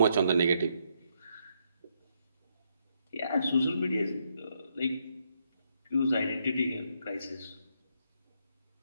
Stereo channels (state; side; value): inverted; both; correlation -0.76